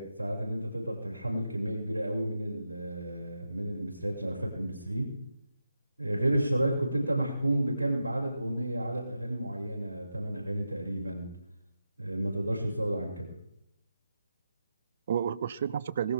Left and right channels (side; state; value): both; inverted; correlation -0.88